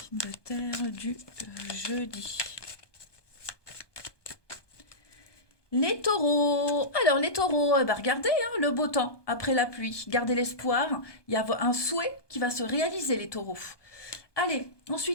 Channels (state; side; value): late; right; 1.2 ms